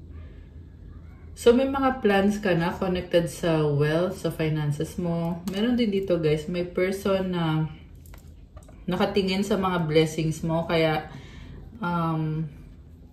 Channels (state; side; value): identical; both; correlation 1.00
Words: So, may mga plans ka na connected sa wealth, sa finances mo. Meron din dito guys, may person na nakatingin sa mga blessings mo. Kaya,